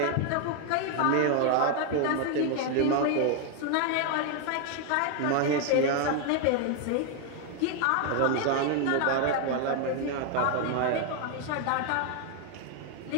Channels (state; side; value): different; both; correlation 0.00